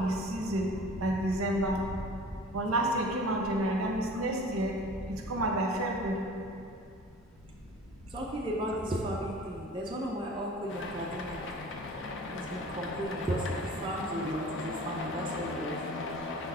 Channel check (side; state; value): both; normal; correlation 0.43